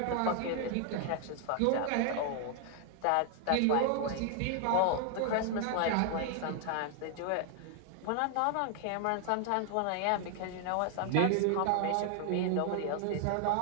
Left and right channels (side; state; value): both; different; correlation 0.00